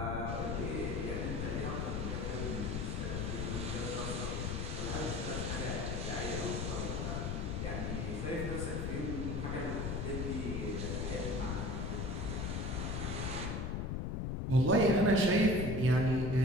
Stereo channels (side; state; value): left; noise; rumble, 1 dB below the sound